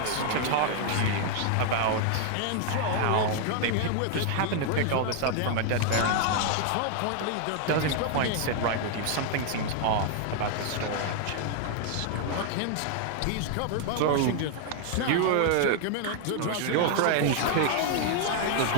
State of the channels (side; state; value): both; different; correlation 0.00